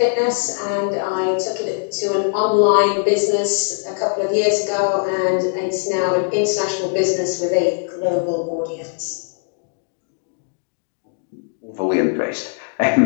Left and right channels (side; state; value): right; silent; 65 dB below the other